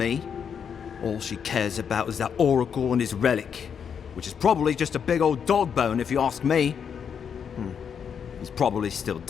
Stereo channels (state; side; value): quieter; right; 7.3 dB